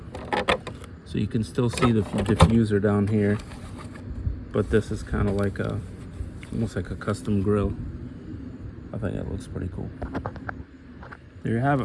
so you can still see the diffuser down here, but this is kind of like almost like a custom grill. I think it looks pretty cool. There you have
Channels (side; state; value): both; identical; correlation 1.00